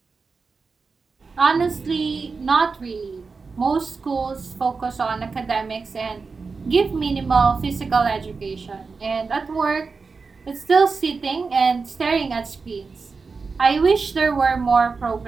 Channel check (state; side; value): quieter; left; 4.6 dB